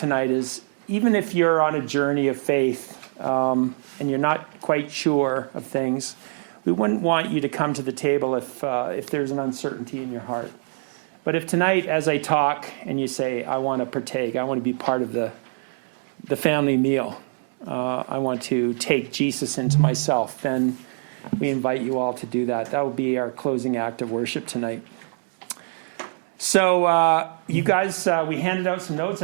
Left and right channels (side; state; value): left; silent; digital silence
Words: is, even if you're on a journey of faith and you're not quite sure of things, we wouldn't want you to come to the table if there's an uncertainty in your heart. But if tonight, as I talk, and you say, I want to partake, I want to be part of the family meal, I want to take Jesus into myself, then we invite you all to do that. That will be our closing act of worship tonight. So you guys, we handed out some notes.